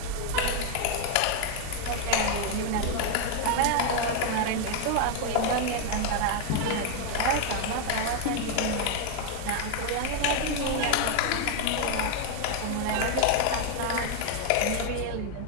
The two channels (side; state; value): both; different; correlation 0.00